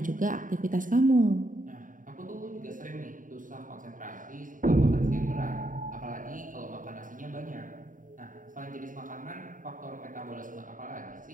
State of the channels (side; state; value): left; late; 0.39 ms